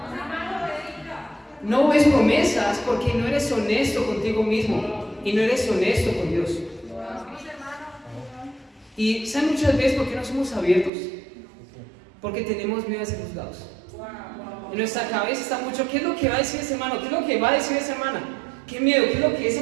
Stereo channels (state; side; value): drops out; left; at 10.9 s